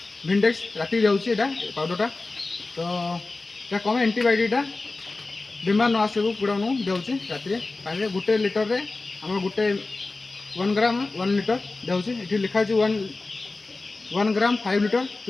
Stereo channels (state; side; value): quieter; right; 3.4 dB